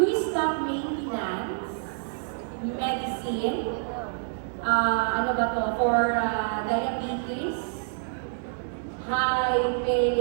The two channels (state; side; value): silent; left; digital silence